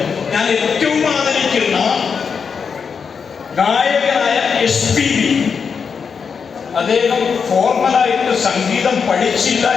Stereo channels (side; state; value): right; quieter; 6.0 dB